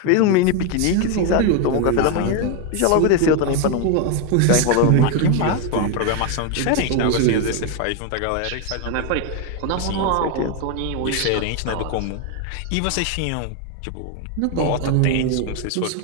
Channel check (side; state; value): both; different; correlation 0.01